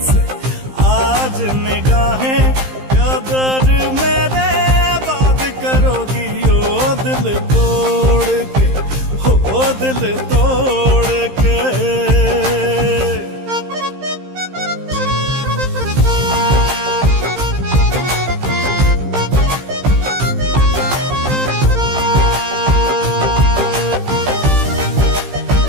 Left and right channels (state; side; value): late; left; 15 ms